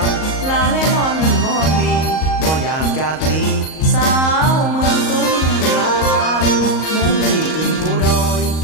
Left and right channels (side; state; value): right; late; 38 ms